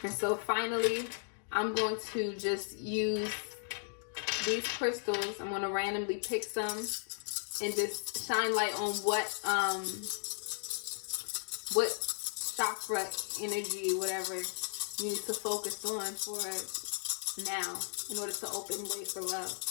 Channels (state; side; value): silent; right; digital silence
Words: so finally, I'm going to just use these crystals. I'm going to randomly pick some and just shine light on what chakra energy, whatever you need to focus on for now in order to open way for love.